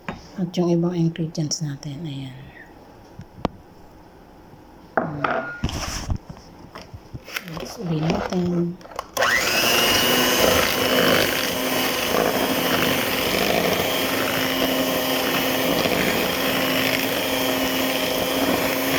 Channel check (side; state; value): both; identical; correlation 1.00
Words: at yung ibang ingredients natin. Ayan. Let's ulit natin.